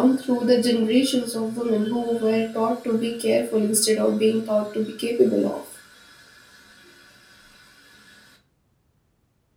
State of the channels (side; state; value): both; identical; correlation 1.00